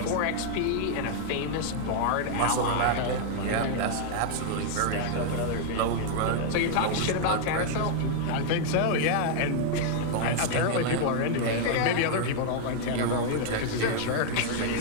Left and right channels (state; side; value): different; both; correlation -0.01